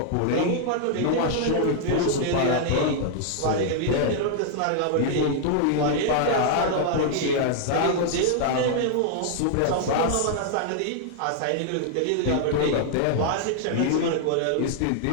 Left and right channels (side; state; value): both; different; correlation 0.00